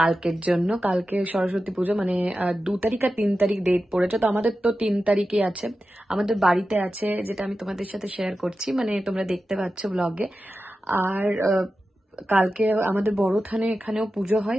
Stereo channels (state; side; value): normal; both; correlation 0.92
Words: জন্য। কালকে সরস্বতী পুজো, মানে 2 তারিখ আর 3 তারিখ ডেট পড়েছে। তো আমাদের তো 3 তারিখে আছে, আমাদের বাড়িতে আছে, যেটা আমি তোমাদের সাথে শেয়ার করছি, মানে তোমরা দেখতে পাচ্ছ ব্লগে। আর কালকে আমাদের বড় থানে এখানেও পুজো